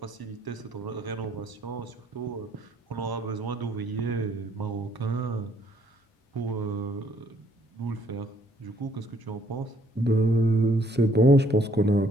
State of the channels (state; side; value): normal; both; correlation 0.66